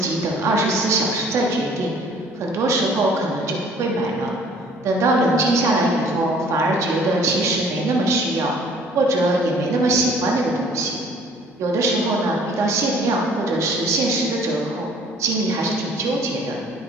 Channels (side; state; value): both; normal; correlation 0.55